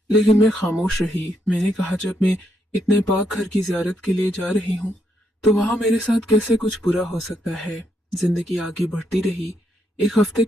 लेकिन मैं खामोश रही। मैंने कहा, जब मैं इतने पाक घर की जियारत के लिए जा रही हूँ तो वहां मेरे साथ कैसे कुछ बुरा हो सकता है। जिंदगी आगे बढ़ती रही। एक हफ्ते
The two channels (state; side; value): normal; both; correlation 0.77